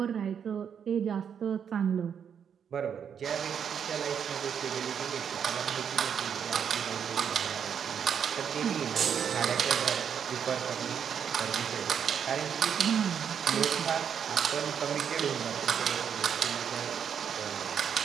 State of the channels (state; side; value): quieter; left; 7.8 dB